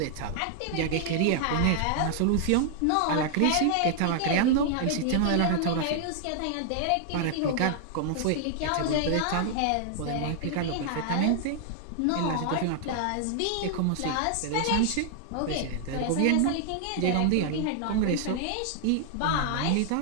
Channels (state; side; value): different; both; correlation 0.00